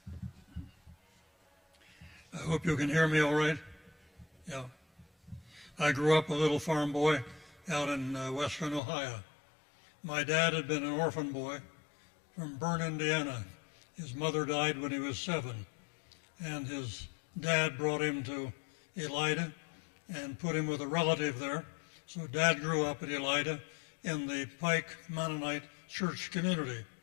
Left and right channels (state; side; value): drops out; right; at 8.8 s